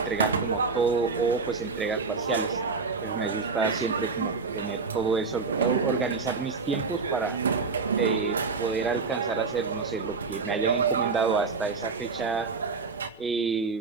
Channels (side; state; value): left; quieter; 4.6 dB